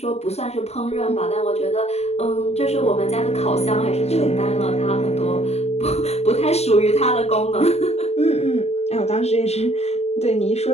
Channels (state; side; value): late; right; 0.31 ms